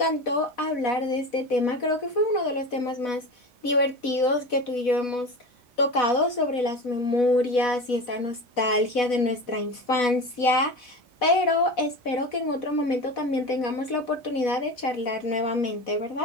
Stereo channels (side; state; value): right; late; 4.1 ms